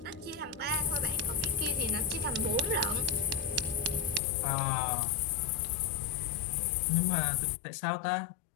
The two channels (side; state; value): right; drops out; at 4.2 s